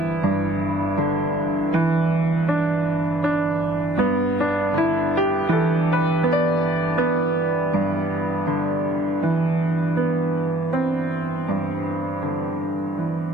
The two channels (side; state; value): both; normal; correlation 0.57